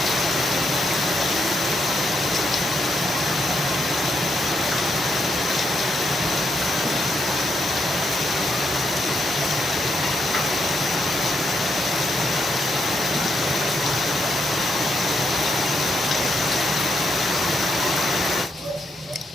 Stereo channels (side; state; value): both; normal; correlation 0.79